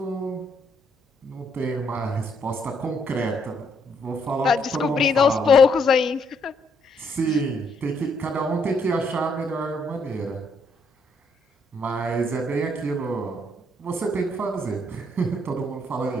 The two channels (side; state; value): both; normal; correlation 0.72